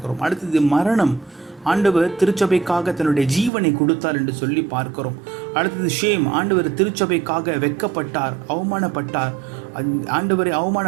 அடுத்தது மரணம், ஆண்டவர் திருச்சபைக்காக தன்னுடைய ஜீவனை கொடுத்தார் என்று சொல்லி பார்க்கிறோம். அடுத்தது ஷேம், ஆண்டவர் திருச்சபைக்காக வெட்கப்பட்டார், அவமானப்பட்டார், ஆண்டவரை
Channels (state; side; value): drops out; left; at 3.5 s